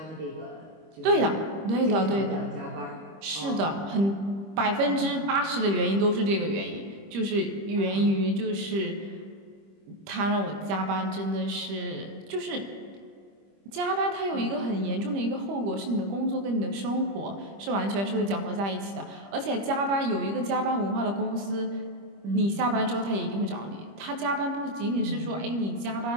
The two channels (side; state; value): left; late; 25 ms